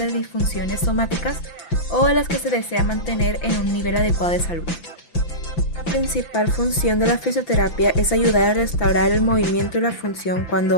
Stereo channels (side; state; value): right; late; 5.9 ms